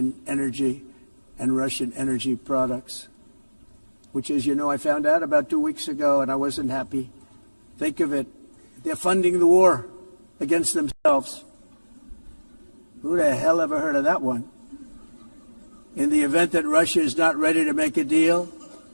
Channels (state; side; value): inverted; both; correlation -1.00